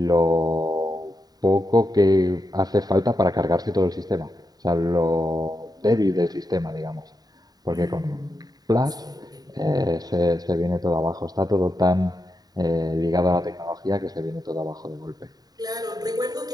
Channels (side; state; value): left; late; 0.19 ms